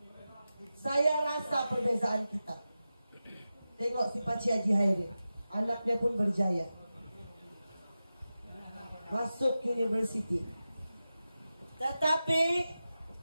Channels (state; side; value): inverted; both; correlation -0.93